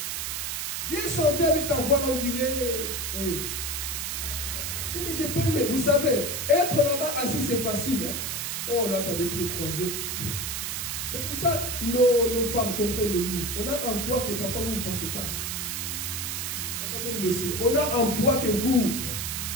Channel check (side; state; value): right; noise; hiss, 3 dB below the sound